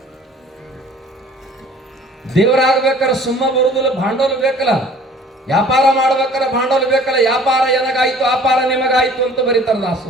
ದೇವರಾಗಬೇಕಾದ್ರೆ ಸುಮ್ಮ ಬರುದಿಲ್ಲ, ಭಾಂಡೋಲ ಬೇಕಲ್ಲ. ವ್ಯಾಪಾರ ಮಾಡ್ಬೇಕಾದ್ರೆ ಭಾಂಡೋಲ ಬೇಕಲ್ಲ. ವ್ಯಾಪಾರ ಏನಾಗಾಯ್ತು ಅಪಾರ ನಿಮಗಾಯ್ತು ಅಂತ ಬರೀತಾರ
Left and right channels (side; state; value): both; normal; correlation 0.51